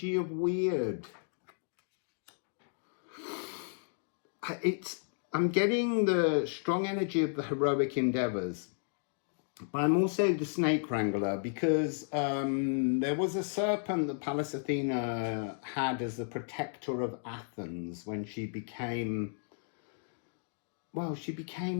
of weird. I'm getting the strong energy of the heroic endeavors. But I'm also the snake wrangler because there was a serpent that Pallas Athena had as the protector of Athens when she became,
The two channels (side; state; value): right; silent; digital silence